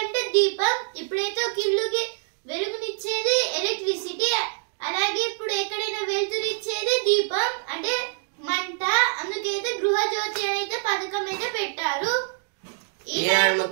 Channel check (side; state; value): left; silent; 61 dB below the other